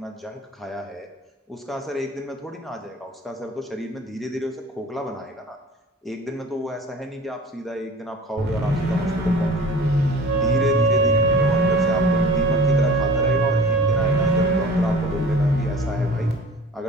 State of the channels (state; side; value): normal; both; correlation 0.43